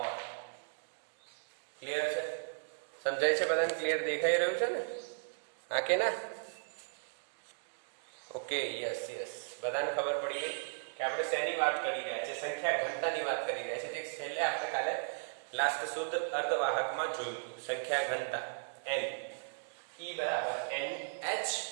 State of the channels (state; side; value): silent; left; digital silence